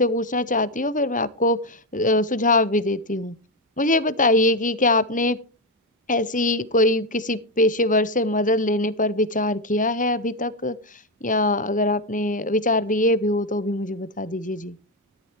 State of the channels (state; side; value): normal; both; correlation 0.08